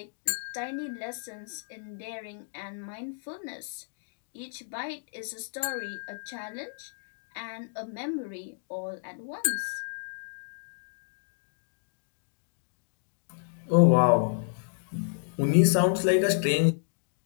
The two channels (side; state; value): right; silent; digital silence